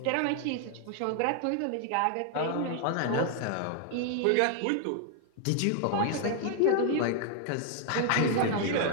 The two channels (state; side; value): different; both; correlation 0.00